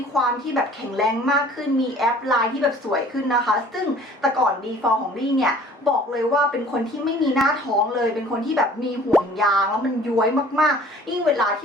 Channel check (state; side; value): normal; both; correlation 0.50